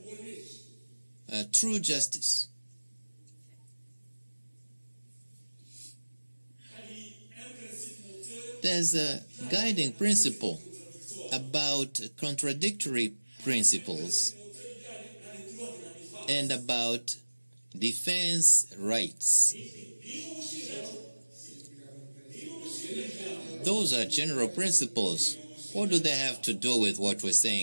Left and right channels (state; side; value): inverted; both; correlation -1.00